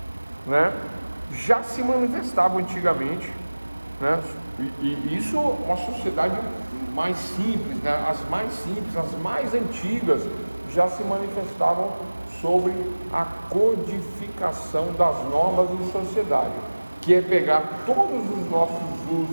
né, já se manifestava antigamente, né, e isso uma sociedade mais simples, né, as mais antigas já se manifestavam sobre a codificação das normas de sociedade, que é pegar todos os nossos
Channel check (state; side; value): inverted; both; correlation -1.00